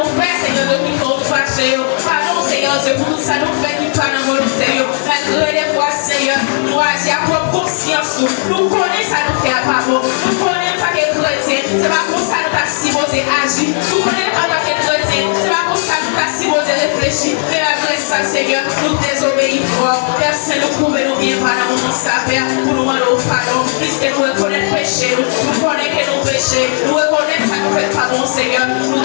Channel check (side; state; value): right; silent; digital silence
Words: fait, Seigneur Dieu, qui faut fâcher, pardon, Seigneur Dieu, pour tout ça nous fait, qui pas dans volonté, malgré les fois, Seigneur, nous agir à propre conscience, nous connaissons ça nous fait à part bon, nous connaissons en tant que chrétien, c'est pas pour ça nous pas supposé agir, nous connaissons en tant que chrétien, c'est pas pour ça nous pas supposé réfléchir, mais après ça, Seigneur, nous désobéissons, personne nous pouvait nous bien par dans mon sapin, pour nous demander pardon, puisque nous reconnaissons péché, nous connaissons que nous péchons, nous reconnaissons ça nous fait pas bon, Seigneur,